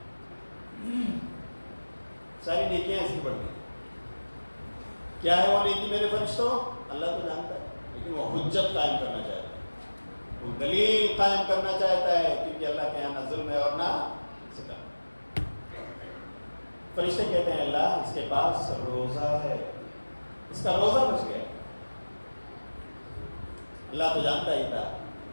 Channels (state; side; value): inverted; both; correlation -1.00